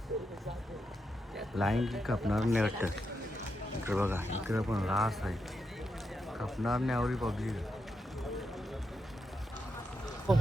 लाईन की कापणार नाही वाटतं. इकडे बघा इकडे पण रास आहे कापणार नाही आवडी पब्लिक.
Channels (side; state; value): both; normal; correlation 0.84